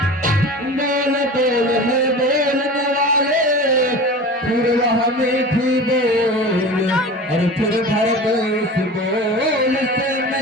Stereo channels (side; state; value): both; normal; correlation 0.35